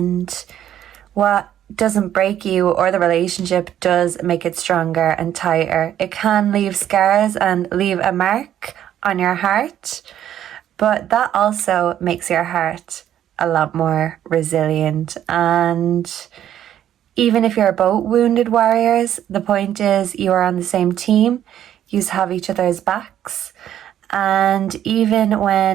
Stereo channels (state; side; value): quieter; left; 10.9 dB